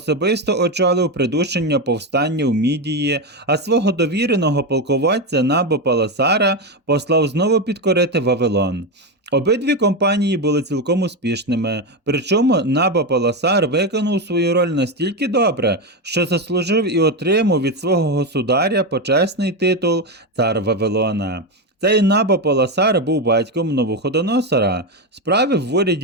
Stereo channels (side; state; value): both; normal; correlation 0.11